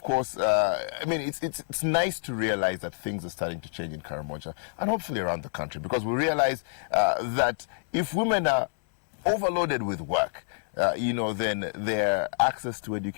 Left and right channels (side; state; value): right; silent; 60 dB below the other